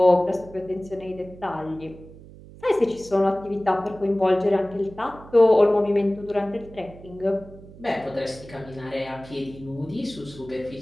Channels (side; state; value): right; noise; hum, 19 dB below the sound